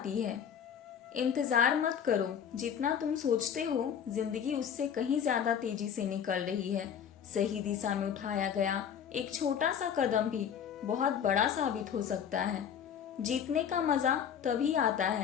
है। इंतजार मत करो, जितना तुम सोचते हो जिंदगी उससे कहीं ज्यादा तेजी से निकल रही है। सही दिशा में उठाया गया एक छोटा सा कदम भी बहुत बड़ा साबित हो सकता है। जीतने का मजा तभी आता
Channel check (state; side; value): quieter; right; 8.2 dB